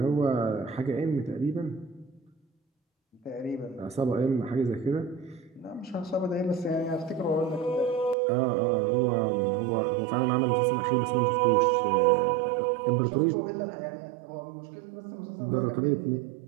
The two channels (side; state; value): left; drops out; at 8.2 s